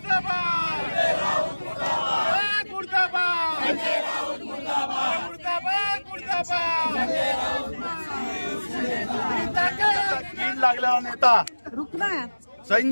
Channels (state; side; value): inverted; both; correlation -1.00